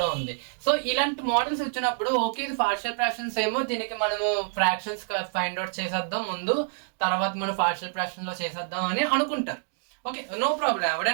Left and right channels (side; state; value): left; silent; digital silence